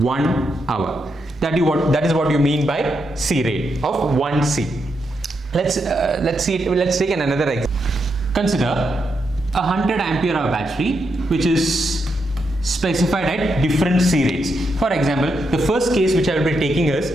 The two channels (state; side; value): normal; both; correlation 0.82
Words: hour. That is what you mean by C rate of 1C. Let's take another example. Consider a 100 ampere hour battery which is specified at different C rates. For example, the first case which I will be taking is